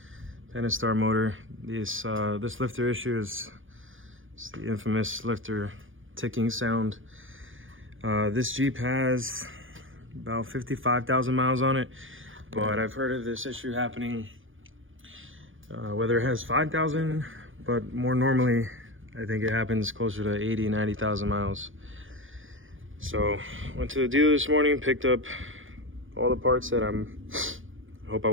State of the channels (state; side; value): late; left; 0.58 ms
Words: Pentastar motor. This lifter issue is the infamous lifter ticking sound. This Jeep has about 55,000 miles on it, but I've heard of this issue happening whether it has 5,000, but more normally I think it happens closer to 80, 90,000 miles. So went to the dealer this morning, picked up all the parts that I hope I